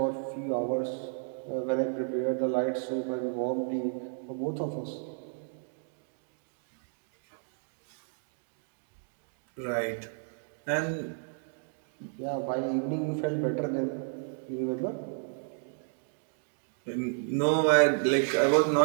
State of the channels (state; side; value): silent; left; digital silence